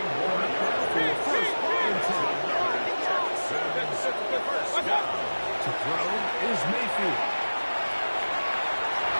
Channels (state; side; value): inverted; both; correlation -1.00